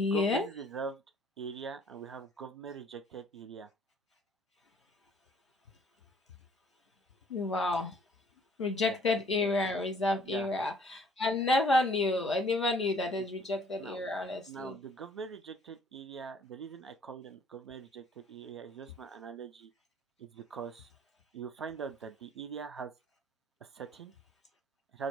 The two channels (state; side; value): normal; both; correlation 0.59